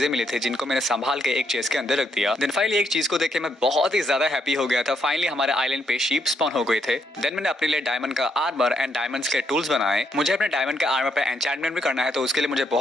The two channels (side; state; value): both; normal; correlation 0.75